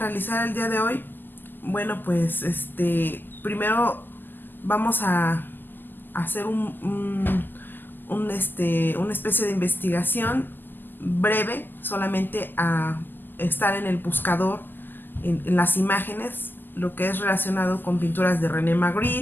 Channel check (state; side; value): late; right; 0.095 ms